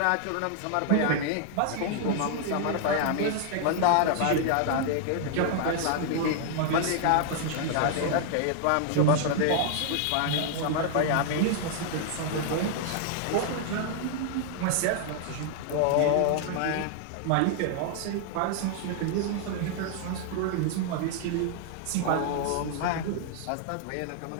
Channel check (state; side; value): different; both; correlation 0.00